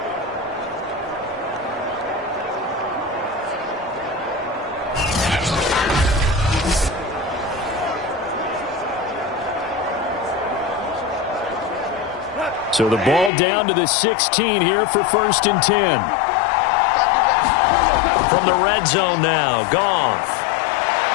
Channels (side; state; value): right; drops out; at 13.3 s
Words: So the ball down to the 16 here for 1st and 10. From the red zone now, Goff.